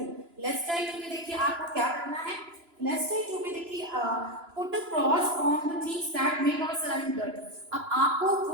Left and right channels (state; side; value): late; left; 2.9 ms